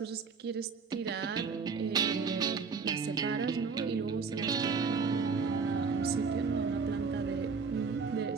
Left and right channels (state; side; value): quieter; left; 5.1 dB